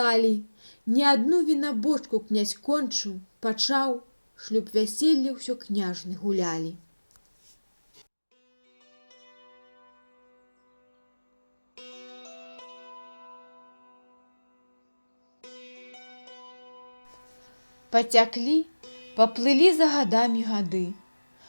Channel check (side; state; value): both; inverted; correlation -1.00